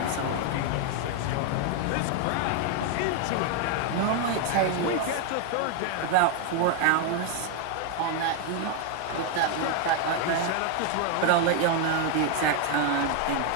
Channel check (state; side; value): different; both; correlation 0.01